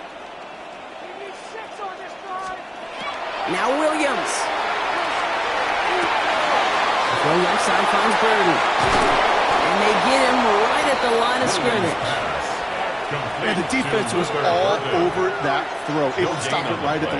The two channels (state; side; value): identical; both; correlation 1.00